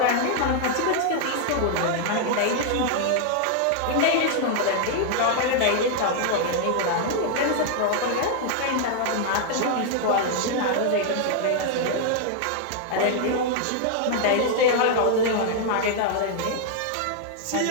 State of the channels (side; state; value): both; different; correlation -0.01